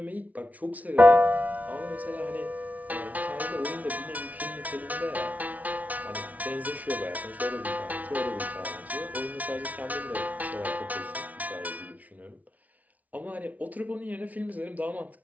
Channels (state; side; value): late; left; 0.072 ms